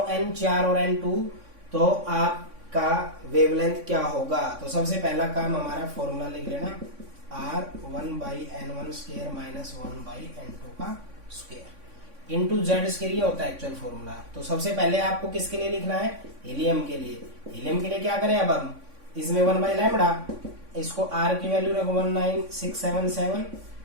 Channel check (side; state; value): left; late; 3.6 ms